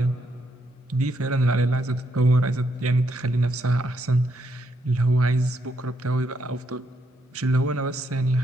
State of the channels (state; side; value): normal; both; correlation 0.76